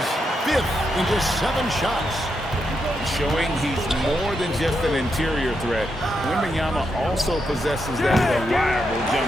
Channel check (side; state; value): both; normal; correlation 0.83